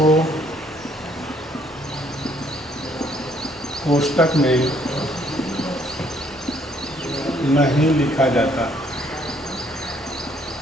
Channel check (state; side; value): normal; both; correlation 0.66